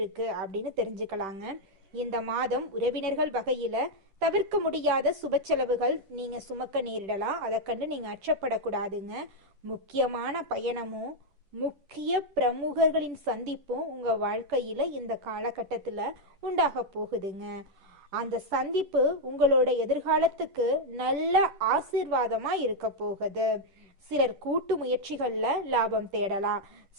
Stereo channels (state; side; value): late; left; 10 ms